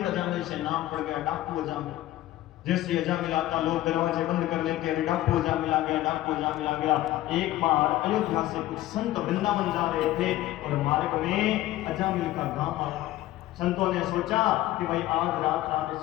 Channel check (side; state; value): right; quieter; 15.3 dB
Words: अजामिल से नाम पड़ गया डाकू अजामिल। जैसे अजामिल आता लोग दरवाजे बंद कर लेते, अरे डाकू अजामिल आ गया, डाकू अजामिल आ गया। एक बार अयोध्या से कुछ संत वृंदावन जा रहे थे और मार्ग में अजामिल का गांव आया। संतों ने सोचा कि भाई आज रात